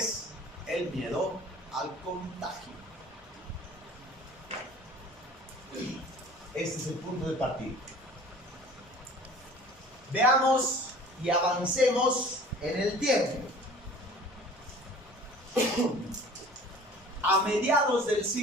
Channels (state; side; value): normal; both; correlation 0.46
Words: el miedo al contagio. Este es el punto de partida. Veamos y avancemos en el tiempo. A mediados del